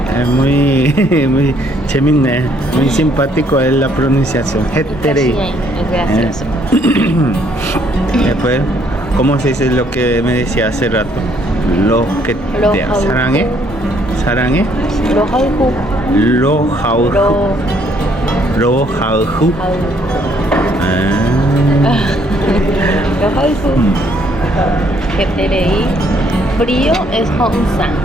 Es muy, muy chémine, muy simpático es la pronunciación. Heterei. Es gracioso. Después, ¿cómo se dice lo que me decía hace rato? Lo que te sarangue. Sarangue. Lo hauju. Lo jauju. Lo Lo jauju. Lo hauju. Heterei. Frío es Hongsan.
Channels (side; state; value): both; normal; correlation 0.67